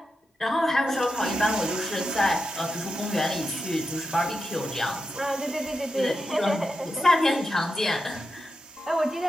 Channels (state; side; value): normal; both; correlation 0.88